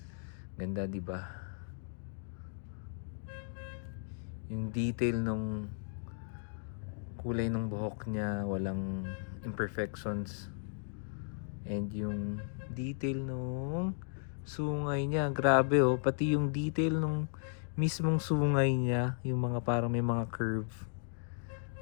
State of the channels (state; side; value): silent; right; digital silence